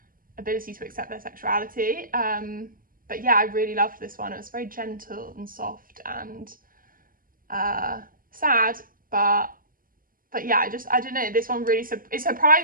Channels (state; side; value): late; left; 0.41 ms